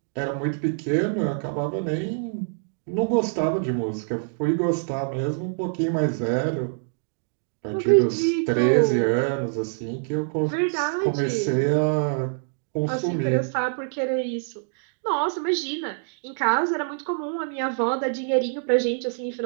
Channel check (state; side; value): silent; left; digital silence